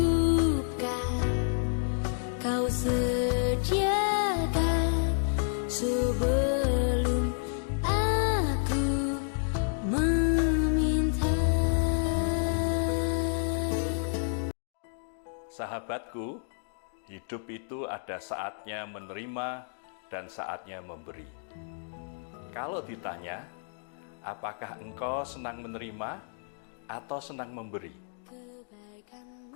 kau sediakan sebelum aku meminta. Sahabatku, hidup itu ada saatnya menerima dan saatnya memberi. Kalau ditanya, apakah engkau senang menerima atau senang memberi?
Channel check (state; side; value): silent; right; digital silence